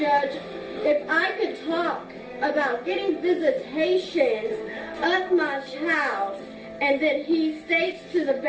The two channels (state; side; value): identical; both; correlation 1.00